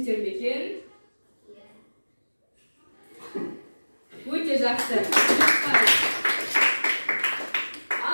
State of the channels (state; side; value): inverted; both; correlation -1.00